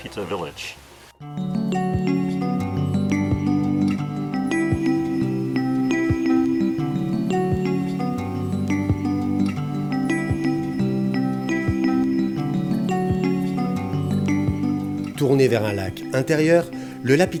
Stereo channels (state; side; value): identical; both; correlation 1.00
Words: Village. Tourné vers un lac intérieur, le